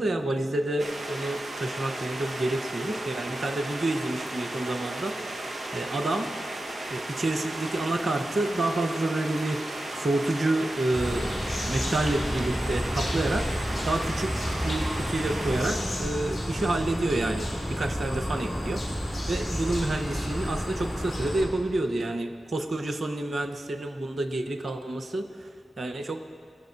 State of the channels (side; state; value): both; normal; correlation 0.92